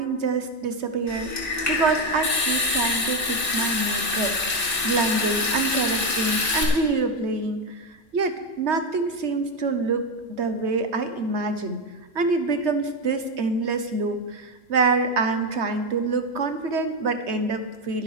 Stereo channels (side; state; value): both; normal; correlation 0.10